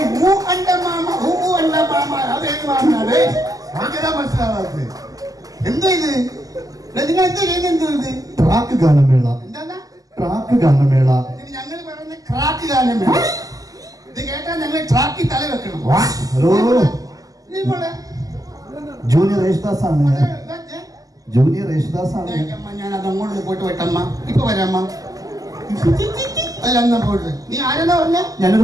ഹൂ അണ്ട മാമ അതേത് മാമനാണ് മനസ്സിലാവാത്തത്? എന്തോ ഇത് നിങ്ങൾ എന്തോ ചെയ്യുന്നത്? എന്തോ ഇത് ട്രാക്ക് ഗാനമേള. എന്താ ട്രാക്ക് ഗാനമേള? ഞങ്ങൾ പറയുന്ന ക്രാക്ക് ഗാനമേള. ഇത് കേട്ടാൽ ഞങ്ങൾ ട്രാക്കിൽ തല വെക്കണം. ഹലോ, ജൂനിയർ യേശുദാസ് ആണ്. ജൂനിയർ യേശുദാസ് ആണ്. ഞാൻ അത് അങ്ങോട്ട് പോയിട്ട് വെട്ടമ്മ. ഇപ്പൊ വരാമ്മ. നീ ആരെന്നാ പറഞ്ഞ?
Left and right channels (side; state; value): left; late; 0.17 ms